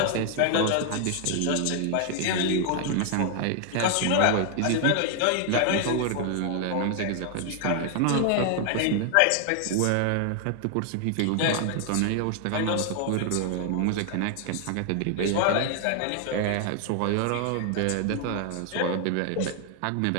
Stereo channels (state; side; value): different; both; correlation 0.00